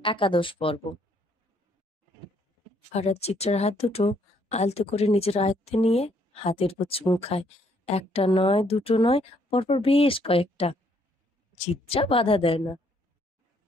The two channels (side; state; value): both; normal; correlation 0.68